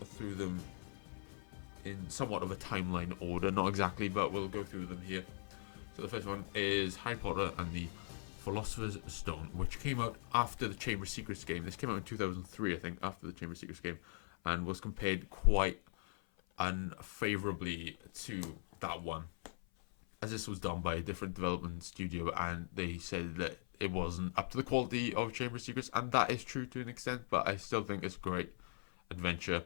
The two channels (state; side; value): silent; right; 51 dB below the other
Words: through them in somewhat of a timeline order, not exactly, but we'll go through them here. So the first one is Harry Potter and the Philosopher's Stone, which came out after the Chamber of Secrets game. This came out in 2003, I think, after the Chamber of Secrets game, and was compared quite unfavorably to that one, as this was done by a different development studio, and they said that it wasn't up to the quality of Chamber of Secrets, and that is true to an extent, but I still think it's a great adventure